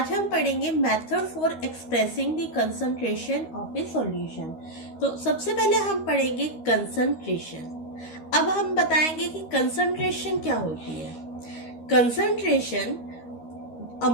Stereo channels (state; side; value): late; right; 13 ms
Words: हम पढ़ेंगे method for expressing the concentration of a solution. तो सबसे पहले हम पढ़ेंगे concentration. अब हम बताएंगे कि concentration क्या होती है. Concentration,